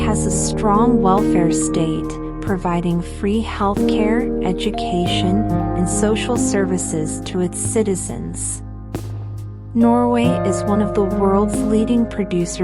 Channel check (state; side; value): identical; both; correlation 1.00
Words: a strong welfare state, providing free healthcare, education, and social services to its citizens. Norway is one of the world's leading